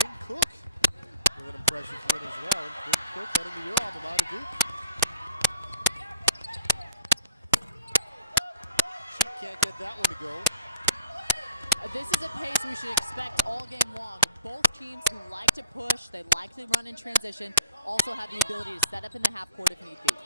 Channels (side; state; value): both; inverted; correlation -0.54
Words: Cook with an impressive win as well. And Quinn Cook heading to your alma mater, Duke. She can't get that one to go. This is a pace we should expect all game long. Both teams who like to push, they like to run in transition, also have the ability to set up in the half court if need be.